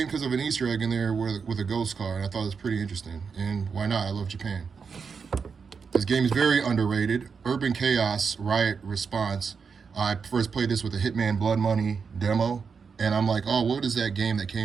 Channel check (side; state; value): left; quieter; 5.7 dB